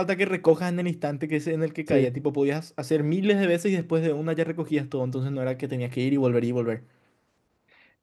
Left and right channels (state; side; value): identical; both; correlation 1.00